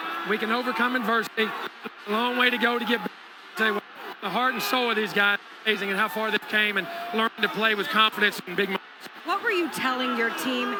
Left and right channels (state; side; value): identical; both; correlation 1.00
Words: We can overcome adversity. A long way to go to get back. Tell you what, the heart and soul of these guys is amazing, and how far they came and learned to play with confidence in big moments. What were you telling your team